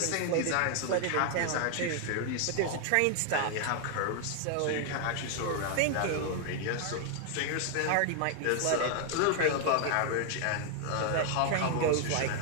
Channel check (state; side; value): different; both; correlation 0.00